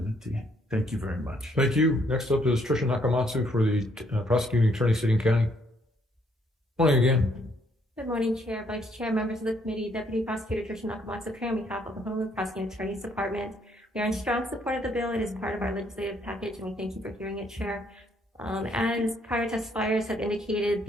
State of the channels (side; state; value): both; normal; correlation 0.69